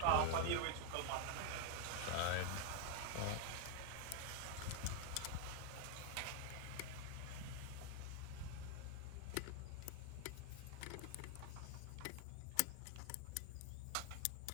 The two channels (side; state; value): both; different; correlation 0.00